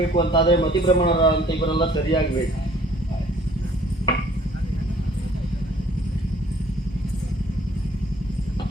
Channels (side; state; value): both; normal; correlation 0.57